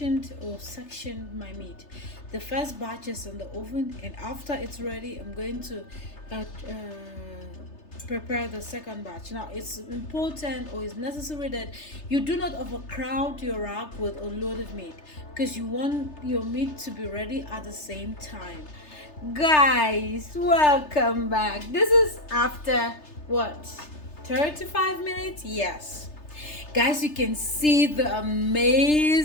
or sectioned my meat. The first batch is in the oven, and after it's ready, I'm going to prepare the second batch. Now, it's important or it's necessary that you do not overcrowd your rack with a lot of meat, because you want your meat to be ready at the same time. Guys, welcome back. This is after what, 35 minutes? Yes. Guys, you can see the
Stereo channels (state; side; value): late; right; 3.3 ms